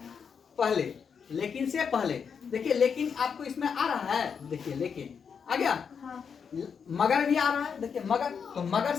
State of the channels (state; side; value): quieter; right; 6.5 dB